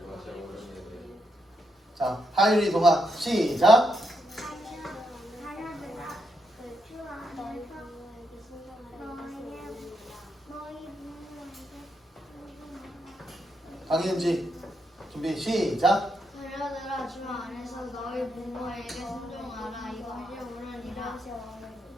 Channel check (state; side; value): normal; both; correlation 0.80